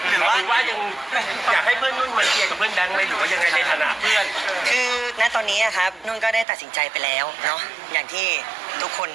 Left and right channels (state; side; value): drops out; left; at 6.5 s